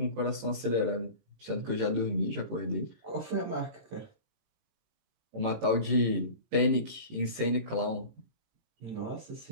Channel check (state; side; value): late; left; 18 ms